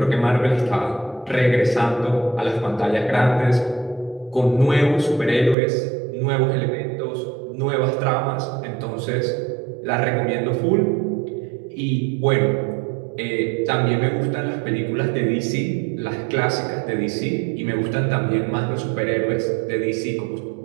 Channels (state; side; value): drops out; left; at 5.6 s